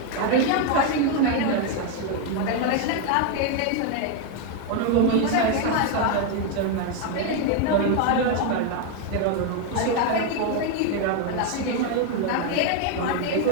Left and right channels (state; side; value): different; both; correlation 0.01